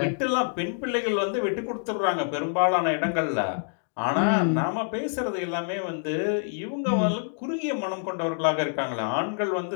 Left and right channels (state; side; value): silent; right; digital silence